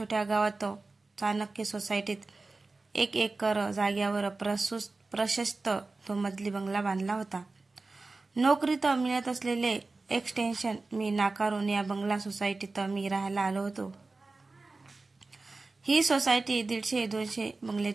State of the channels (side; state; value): left; quieter; 3.5 dB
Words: गावात चाणक्य सोसायटीत 1 एकर जागेवर प्रशस्त तो मजली बंगला बांधला होता. नोकरीत मिळत असलेले एक्सटेन्शन मी नाकारून या बंगला सोसायटीत मी राहायला आलो होतो. ही सोसायटी 150-200